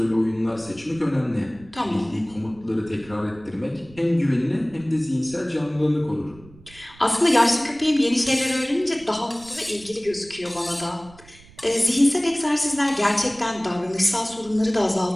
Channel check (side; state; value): right; noise; rumble, 23 dB below the sound